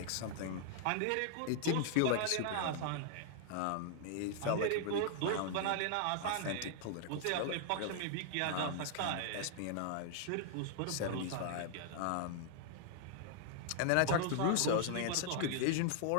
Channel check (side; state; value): both; different; correlation -0.01